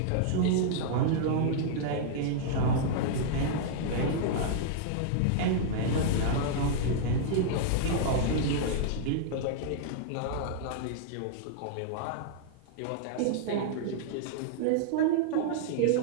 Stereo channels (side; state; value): both; different; correlation -0.01